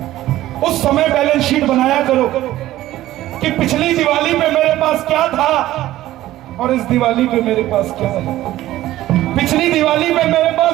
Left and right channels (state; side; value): quieter; left; 14.9 dB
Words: उस समय बैलेंस शीट बनाया करो कि पिछली दिवाली पे मेरे पास क्या था और इस दिवाली पे मेरे पास क्या है। पिछली दिवाली पे मेरे पास